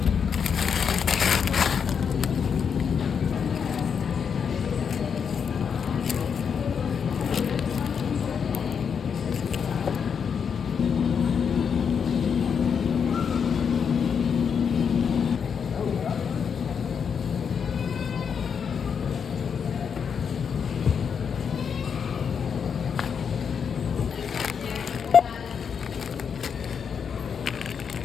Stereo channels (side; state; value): right; quieter; 6.8 dB